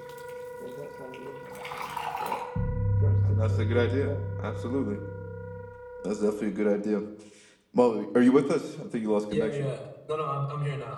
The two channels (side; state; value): both; identical; correlation 1.00